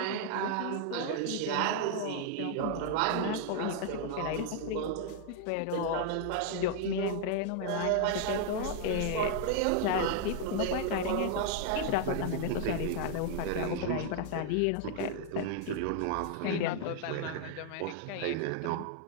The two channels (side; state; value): both; different; correlation 0.00